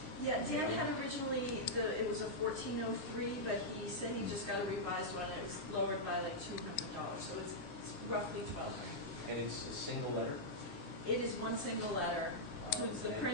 Yeah, Dan had originally, it was a $1,403, but he said he just got a revised one, and it was lowered by like $200, so it's roughly $1,200. And it's a single letter? It is one single letter. So it's the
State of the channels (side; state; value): right; late; 7.6 ms